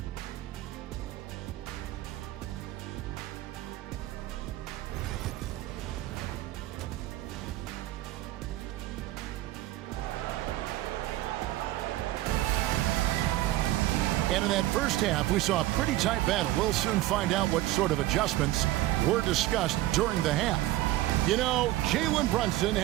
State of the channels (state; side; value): quieter; left; 15.9 dB